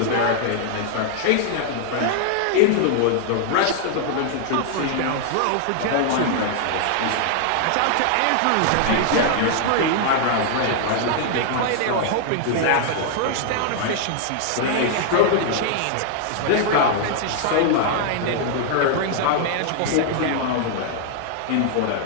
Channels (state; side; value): different; both; correlation -0.01